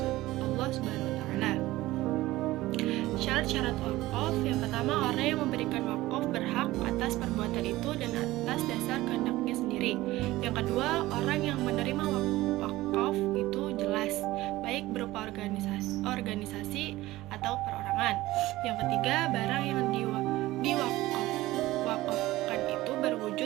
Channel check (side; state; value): left; quieter; 17.6 dB